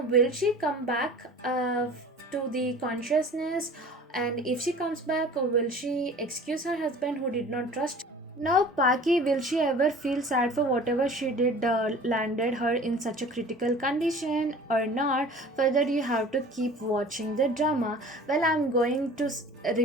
she come back to the consciousness? And if she comes back, will she excuse her husband who did not trust? Now, Paki, will she ever feel sad for whatever she did landed her in such a critical condition or not? Further, you have to keep watching the drama. Well, I'm going to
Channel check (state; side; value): normal; both; correlation 0.43